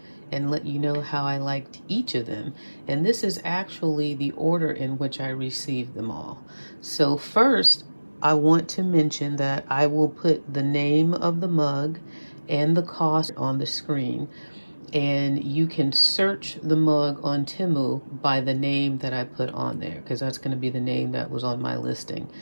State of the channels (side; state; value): both; inverted; correlation -1.00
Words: and let you know how I liked each of them. And this is actually the order in which I received them all. So first, I want to mention that I will put the name of the mug and the cost on the screen. And you can search the mug on Temu by the name that I put on there, because that's going to be the name that was on my listing.